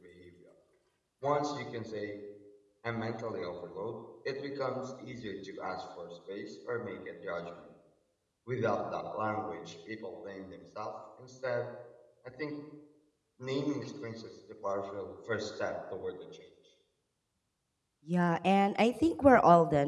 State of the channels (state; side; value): identical; both; correlation 1.00